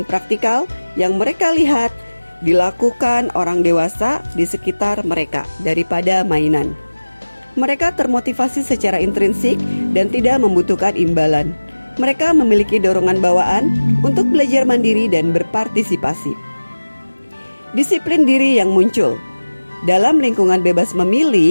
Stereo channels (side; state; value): both; inverted; correlation -1.00